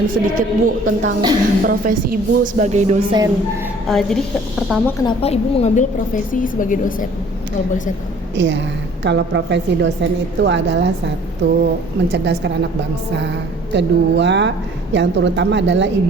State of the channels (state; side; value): normal; both; correlation 0.53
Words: sedikit Bu tentang profesi Ibu sebagai dosen. Jadi pertama kenapa Ibu mengambil profesi sebagai dosen? Kalau boleh saya tahu. Iya, kalau profesi dosen itu adalah satu, mencerdaskan anak bangsa. Kedua, yang terutama adalah